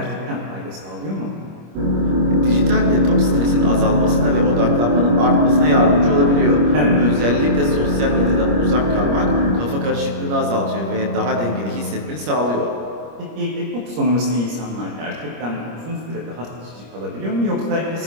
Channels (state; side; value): late; left; 25 ms